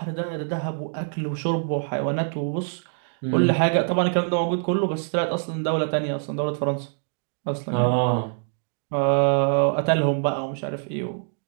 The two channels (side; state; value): left; silent; digital silence